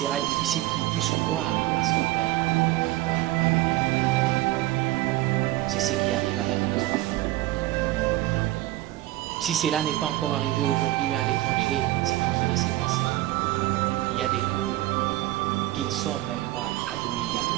qu'il puisse croire à son père. Pourquoi papa n'avait pas le temps? C'est ce qui arrive avec nos enfants. Si cela n'est pas encore arrivé aujourd'hui, mais à l'étranger, c'est en train de se passer. Il y a des cours qui ne sont même pas admis à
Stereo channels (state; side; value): quieter; left; 16.9 dB